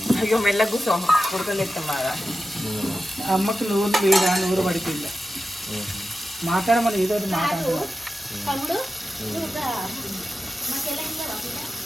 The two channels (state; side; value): normal; both; correlation 0.92